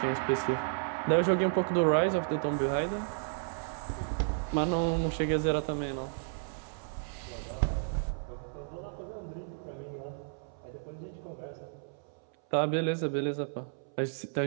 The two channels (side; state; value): left; silent; 56 dB below the other